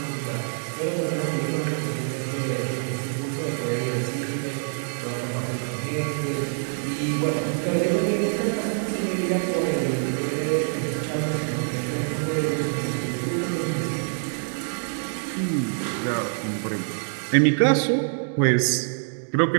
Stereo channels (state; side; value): silent; left; digital silence